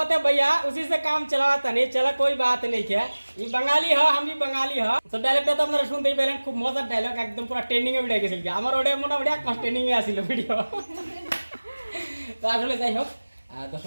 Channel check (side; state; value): both; inverted; correlation -1.00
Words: है भैया, उसी से काम चलाता नहीं चला, कोई बात नहीं क्या। ये बंगाली है, हम भी बंगाली है। तो डायलॉगটা তো আপনারা শুনতেই পেলেন, খুব মজার ডায়লগ, একদম পুরো ট্রেন্ডিং এ উঠে গেছিল। আমার ওটা মোটামুটি এক মাস ট্রেন্ডিং এ আসিল ভিডিও। তো আসলে যাই হোক,